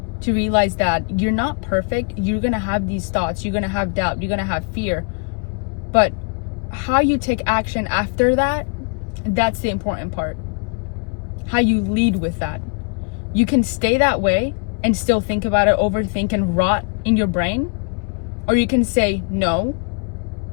to realize that you're not perfect. You're going to have these thoughts. You're going to have doubt. You're going to have fear. But how you take action after that, that's the important part. How you lead with that. You can stay that way and still think about it, overthink, and rot in your brain. Or you can say, no,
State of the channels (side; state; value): right; quieter; 37.8 dB